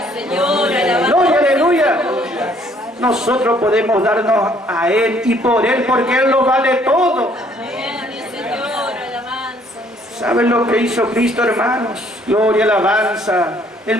Gloria, aleluya. Nosotros podemos darnos a Él y por Él, porque Él lo vale todo. ¿Saben lo que hizo Cristo, hermanos? Gloria, alabanza.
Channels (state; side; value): normal; both; correlation 0.62